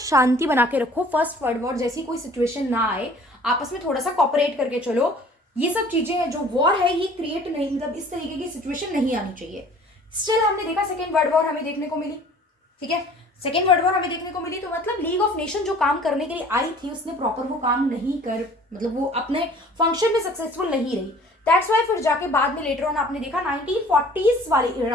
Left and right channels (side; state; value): both; normal; correlation 0.50